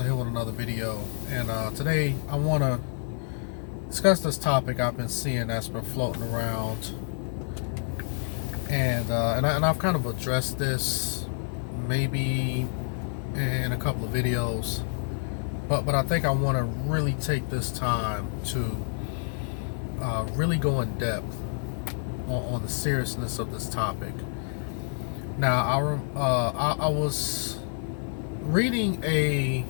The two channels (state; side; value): silent; right; 59 dB below the other